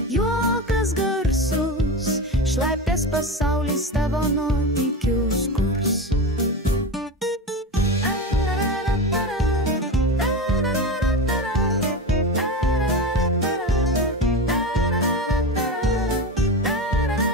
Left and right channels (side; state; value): both; normal; correlation 0.23